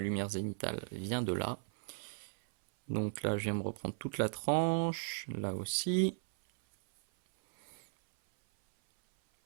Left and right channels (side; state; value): left; silent; 54 dB below the other